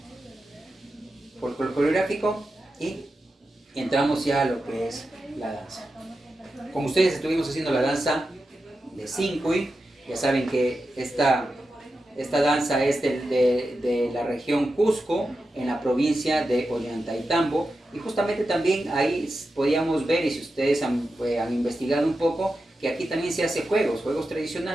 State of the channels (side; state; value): both; normal; correlation 0.91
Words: coreográfico, y entramos ya a lo que es la danza. con ustedes estuvimos haciendo la danza de Sincuy. Ya saben que esta danza es de la región Cusco, en la provincia de Ollantaytambo. Y justamente también ahí podíamos ver, y si ustedes han investigado un poco, que aquí también se hace juegos